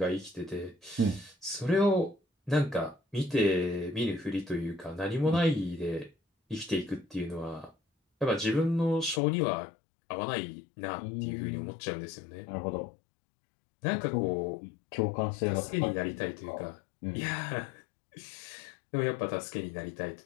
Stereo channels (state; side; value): drops out; right; at 9.2 s